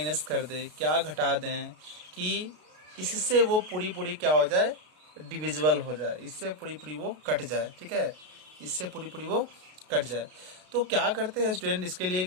कर दें, क्या घटा दें कि इससे वो पूरी क्या हो जाए, डिविजिबल हो जाए, इससे पूरी वो कट जाए। ठीक है, इससे पूरी वो कट जाए। तो क्या करते हैं स्टूडेंट इसके लिए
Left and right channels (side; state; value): left; late; 33 ms